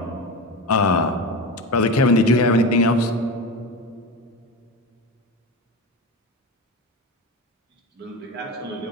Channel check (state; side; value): normal; both; correlation 0.23